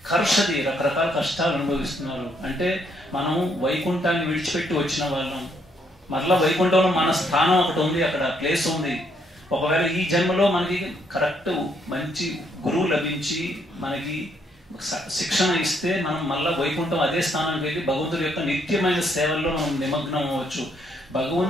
కర్షది రకరకాల కష్టాలు అనుభవిస్తున్నారు. అంటే మనం వైకుంఠాన్ని విడిచిపెట్టి వచ్చిన వాళ్ళం. మరలా వైకుంఠంలో మన స్థానం ఒకటి ఉంది, అక్కడ ప్లేస్ ఉంది. ఒకవేళ ఈ జన్మలో మనకి కరెక్ట్ మంచి గురువు లభించి మనకి శిక్షణ ఇస్తే మనం మళ్ళా వైకుంఠం అదే స్థానానికి వెళ్ళి భగవంతుడి యొక్క నిత్యమైన సేవల్లో మనం నిమగ్నం అవ్వచ్చు.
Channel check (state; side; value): normal; both; correlation 0.72